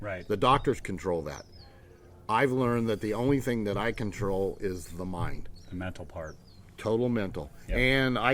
Right. The doctors control that. I've learned that the only thing that I control is the mind. The mental part. Total mental. Yep. And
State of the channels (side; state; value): both; identical; correlation 1.00